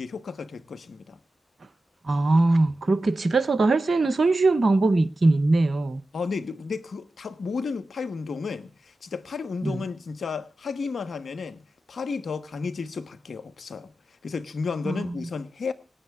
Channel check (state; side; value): normal; both; correlation 0.93